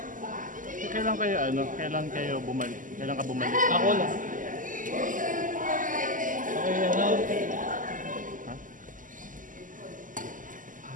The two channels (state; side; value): late; left; 0.38 ms